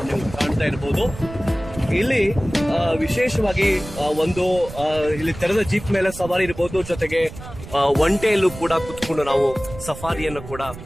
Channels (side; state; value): right; noise; rumble, 14 dB below the sound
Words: ನೀವು ಕಾಣ್ತಾ ಇರ್ಬೋದು. ಇಲ್ಲಿ ವಿಶೇಷವಾಗಿ ಒಂದು ಇಲ್ಲಿ ತೆರೆದ ಜೀಪ್ ಮೇಲೆ ಸವಾರಿ ಇರಬಹುದು, ಜೊತೆಗೆ ಒಂಟೆಯಲ್ಲೂ ಕೂಡ ಕುತ್ಕೊಂಡು ನಾವು ಸಫಾರಿಯನ್ನು ಕೂಡ